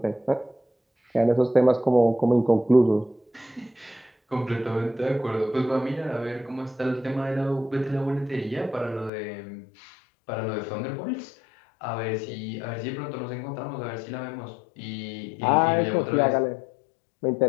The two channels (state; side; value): drops out; right; at 9.1 s